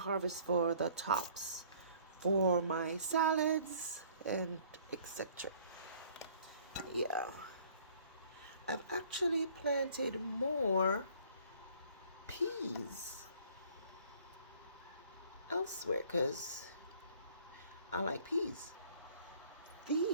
for the tops, for my salads and etc. Yeah, I've actually planted more peas elsewhere because I like peas.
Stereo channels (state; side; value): inverted; both; correlation -0.56